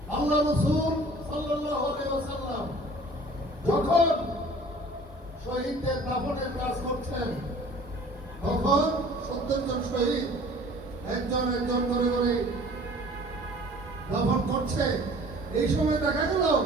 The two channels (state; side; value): normal; both; correlation 0.48